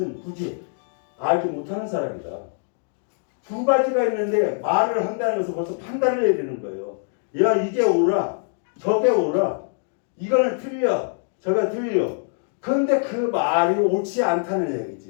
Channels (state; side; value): silent; right; digital silence